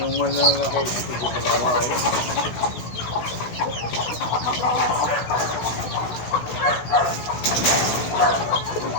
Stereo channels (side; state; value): right; late; 17 ms